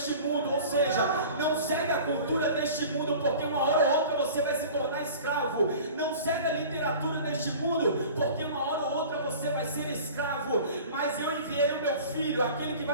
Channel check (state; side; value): inverted; both; correlation -0.41